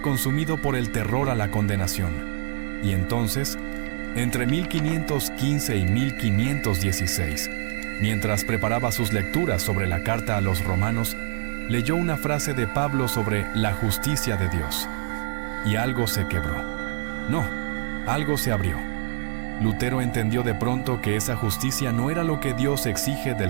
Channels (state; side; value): silent; left; digital silence